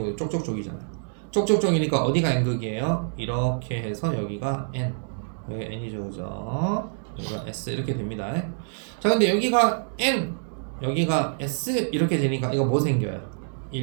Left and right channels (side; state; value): left; silent; digital silence